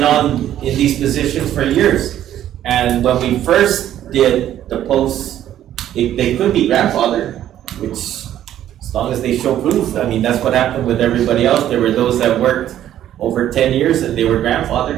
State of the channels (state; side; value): quieter; left; 11.7 dB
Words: in these positions for years. And when we first did the posts, they could be grandfathered, which as long as they show proof, I mean, that's what happened with everybody else. There were those that worked over 10 years and they were